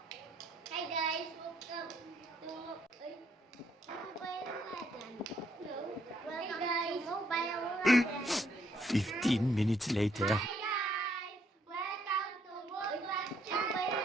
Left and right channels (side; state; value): both; normal; correlation 0.70